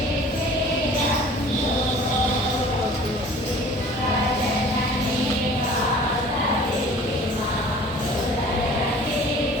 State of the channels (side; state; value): both; normal; correlation 0.47